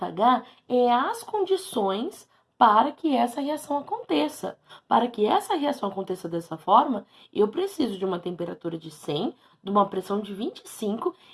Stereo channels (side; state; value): both; identical; correlation 1.00